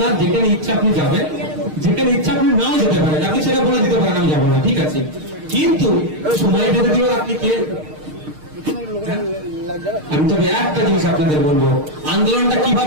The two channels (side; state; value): left; late; 6.5 ms